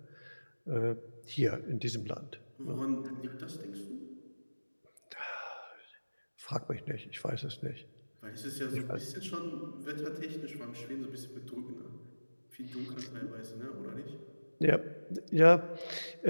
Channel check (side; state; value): both; inverted; correlation -1.00